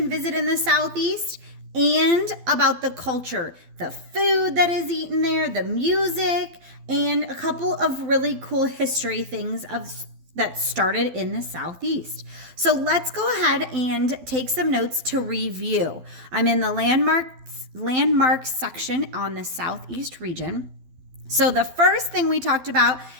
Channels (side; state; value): left; late; 12 ms